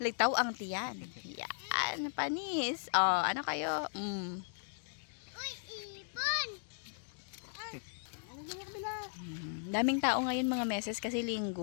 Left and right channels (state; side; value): silent; right; digital silence